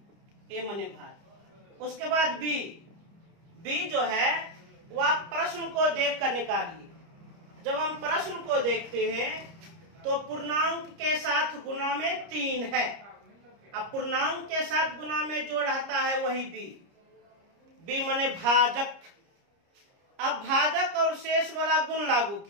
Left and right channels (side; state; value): left; late; 30 ms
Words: a माने भाग। उसके बाद b जो है वह प्रश्न को देखकर निकालिए। जब हम प्रश्न को देखते हैं तो पूर्णांक के साथ गुणा में 3 है। अब पूर्णांक के साथ गुणा में जो रहता है वही बी माने भाजक। अब भाजक और शेष वाला गुण लागू